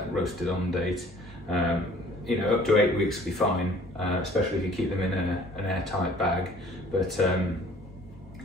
roasted on date. You know, up to 8 weeks will be fine, especially if you keep them in an airtight bag. But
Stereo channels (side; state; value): both; normal; correlation 0.53